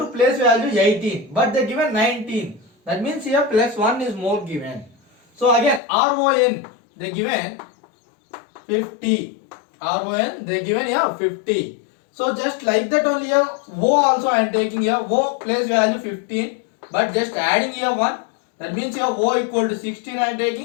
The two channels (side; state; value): right; drops out; at 5.8 s